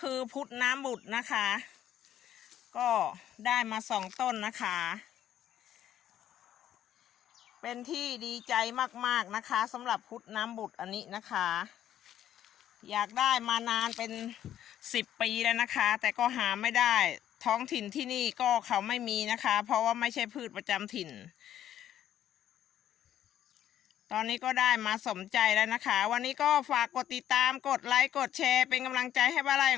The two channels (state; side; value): quieter; right; 11.2 dB